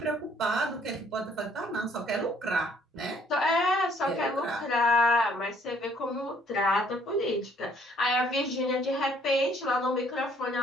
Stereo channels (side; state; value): both; normal; correlation 0.63